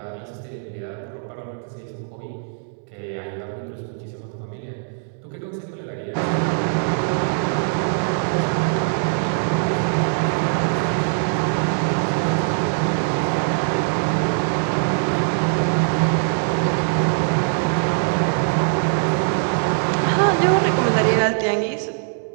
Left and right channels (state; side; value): silent; left; 64 dB below the other